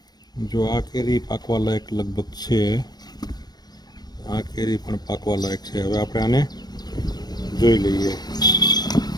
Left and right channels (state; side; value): late; right; 0.19 ms